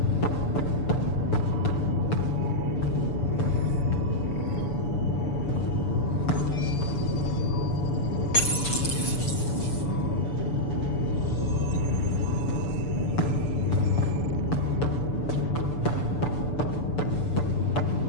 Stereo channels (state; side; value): late; right; 6.9 ms